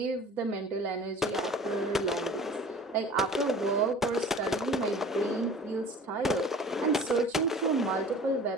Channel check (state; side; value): normal; both; correlation 0.44